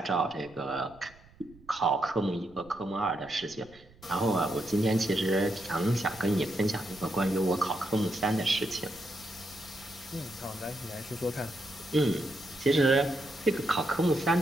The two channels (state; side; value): noise; right; rumble, 25 dB below the sound